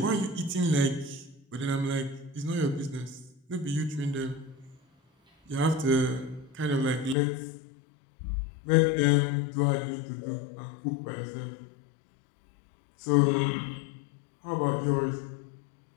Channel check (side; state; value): right; drops out; at 7.2 s